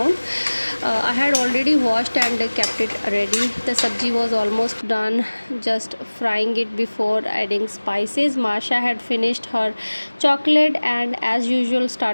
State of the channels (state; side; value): inverted; both; correlation -1.00